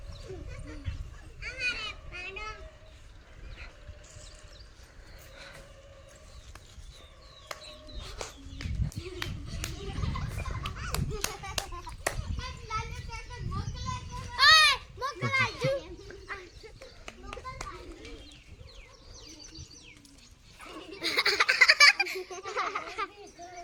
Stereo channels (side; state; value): both; identical; correlation 1.00